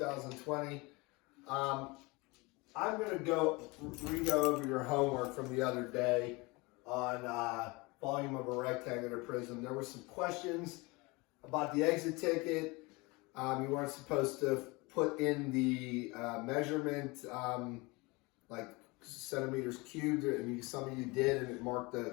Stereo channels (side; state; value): right; quieter; 25.2 dB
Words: I'm going to re-go over your homework from the other day on volume of a rectangular prism. There were some questions about the exit ticket. You weren't supposed to put in the measurement like centimeters cubed, and some of you did, and it marked the